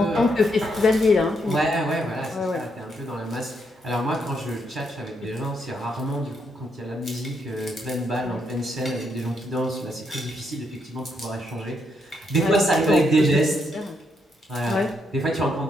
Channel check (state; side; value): normal; both; correlation 0.77